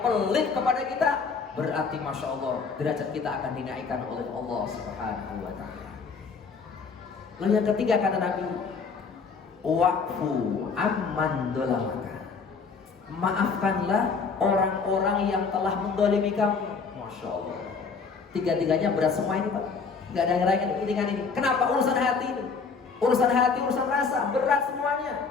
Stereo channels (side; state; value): right; quieter; 5.1 dB